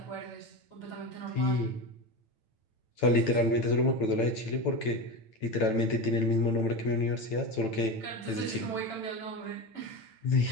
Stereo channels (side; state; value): right; late; 9.0 ms